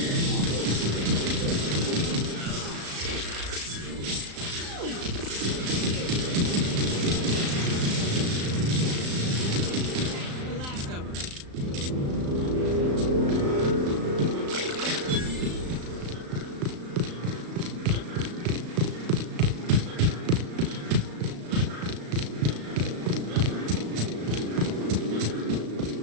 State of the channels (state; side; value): late; left; 35 ms